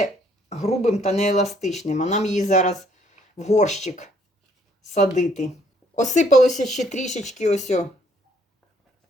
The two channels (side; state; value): both; normal; correlation 0.65